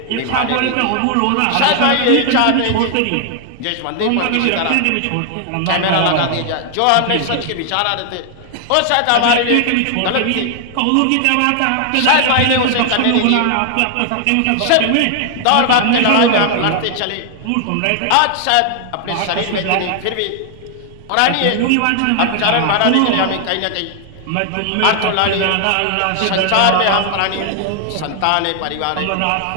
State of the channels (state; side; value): different; both; correlation 0.00